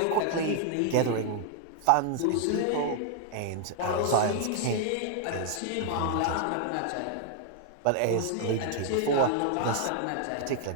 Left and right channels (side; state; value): both; different; correlation 0.00